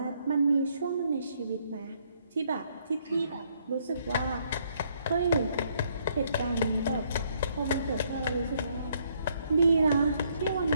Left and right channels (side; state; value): both; inverted; correlation -0.69